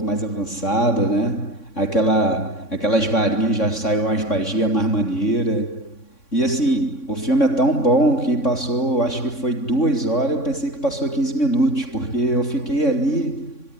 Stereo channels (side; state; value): right; late; 3.6 ms